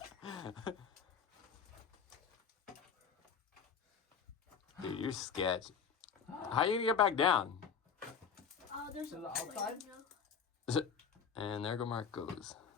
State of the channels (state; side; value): quieter; right; 6.7 dB